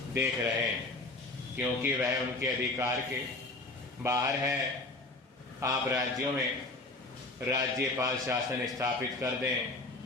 देख रहे हैं, क्योंकि वह उनके अधिकार के बाहर है। आप राज्यों में राज्यपाल शासन स्थापित कर दें,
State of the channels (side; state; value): right; quieter; 3.1 dB